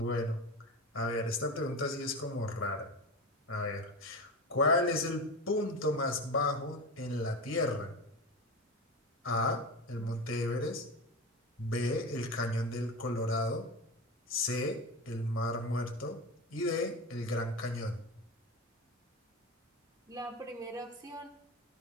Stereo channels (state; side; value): normal; both; correlation 0.23